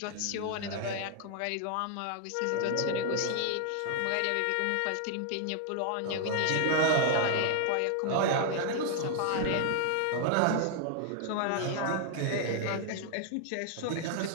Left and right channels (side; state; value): both; different; correlation 0.00